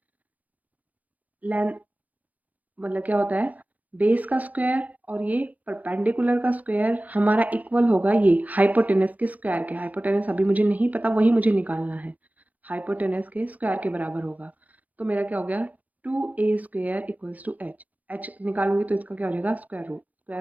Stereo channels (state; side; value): late; left; 0.078 ms